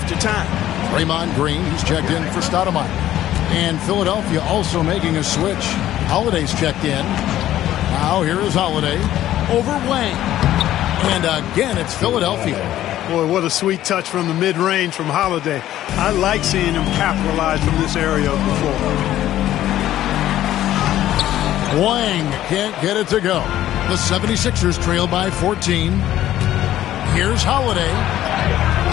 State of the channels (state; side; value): quieter; right; 13.1 dB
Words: time. Draymond Green, he's checked in for Stoudemire. And Philadelphia also making a switch. Holiday's checked in. Now here is Holiday over Wang. And again, it's Philadelphia. Boy, what a sweet touch from the mid-range from Holiday. I like seeing him capitalize from this area of the floor. Wang can't get it to go. The 76ers trail by 14. Here's Holiday.